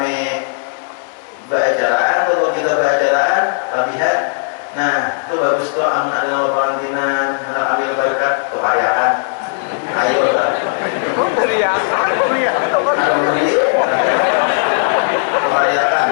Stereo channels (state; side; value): silent; right; digital silence